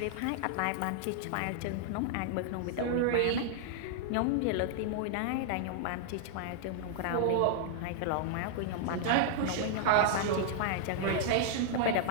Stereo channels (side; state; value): both; different; correlation -0.01